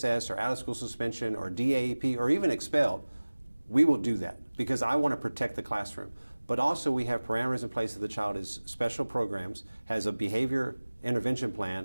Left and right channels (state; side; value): inverted; both; correlation -1.00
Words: or out-of-school suspension or DAEP or even expelled, we will do that, because I want to protect the classroom. But also we have parameters in place if the child is special programs, has a behavior intervention plan